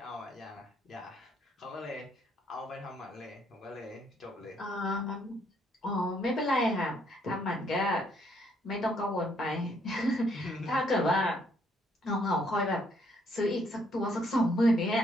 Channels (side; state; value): both; normal; correlation 0.69